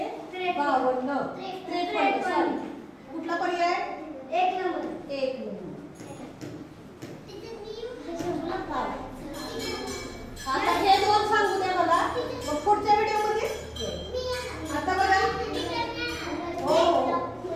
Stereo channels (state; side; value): identical; both; correlation 1.00